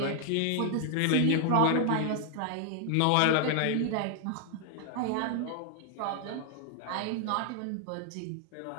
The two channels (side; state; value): both; different; correlation 0.00